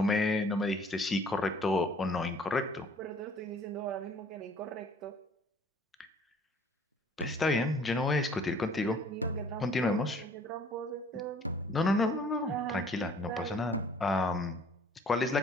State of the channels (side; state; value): both; normal; correlation 0.55